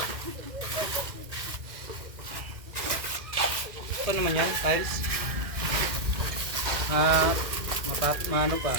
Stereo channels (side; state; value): left; late; 2.1 ms